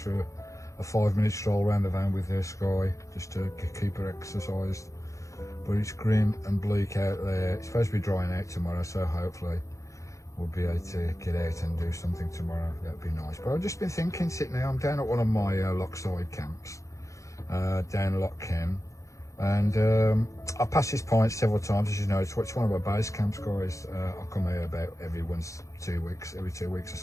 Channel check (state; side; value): late; right; 0.15 ms